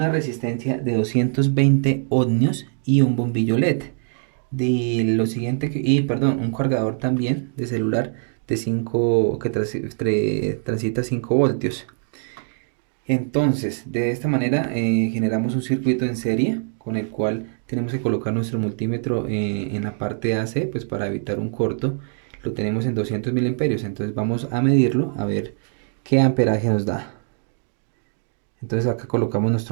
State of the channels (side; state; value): left; silent; 60 dB below the other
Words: resistencia de 220 ohmios y un bombillo LED. Un cargador también de celular de 5 que transita 5 voltios. Entonces, de esta manera generamos un circuito en serie con el cual tenemos que colocar nuestro multímetro en la parte AC, pues para evitar un corto. Lo tenemos en 200 miliamperios, entonces vamos a medirlo a ver qué amperaje nos da. Entonces acá colocamos